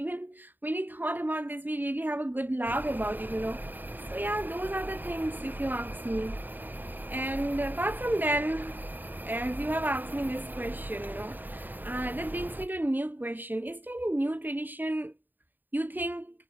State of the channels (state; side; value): late; left; 0.090 ms